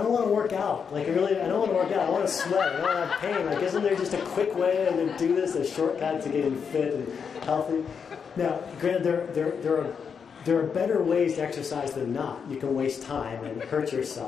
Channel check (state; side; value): quieter; right; 6.5 dB